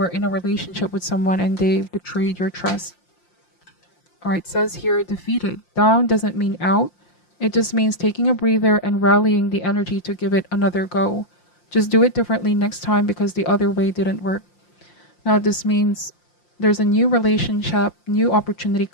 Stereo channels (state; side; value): late; right; 5.7 ms